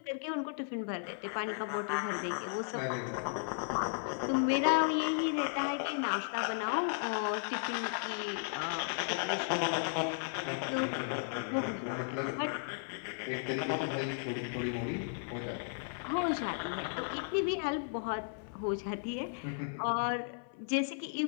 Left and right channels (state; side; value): silent; right; 54 dB below the other